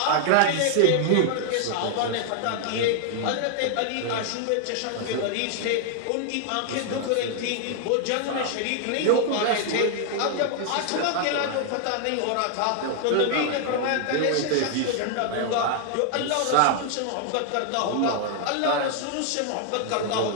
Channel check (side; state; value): both; different; correlation 0.00